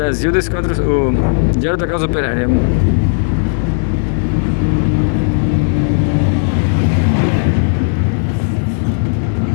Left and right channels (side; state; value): right; silent; digital silence